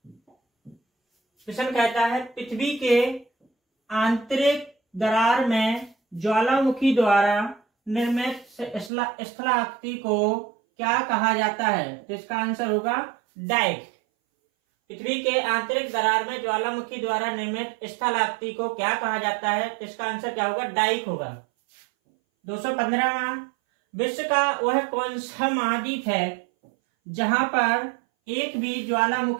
प्रश्न कहता है पृथ्वी के आंतरिक दरार में ज्वालामुखी द्वारा निर्मित स्थलाकृति को क्या कहा जाता है? तो इसका आंसर होगा डाइक। पृथ्वी के आंतरिक दरार में ज्वालामुखी द्वारा निर्मित स्थलाकृति को क्या कहा जाता है? तो इसका आंसर क्या होगा? डाइक होगा। 215वां, विश्व का वह कौन सा महाद्वीप है जहां पर एक भी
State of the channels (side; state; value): left; drops out; at 8.9 s